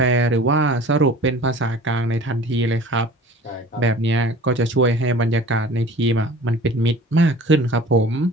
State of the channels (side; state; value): both; normal; correlation 0.43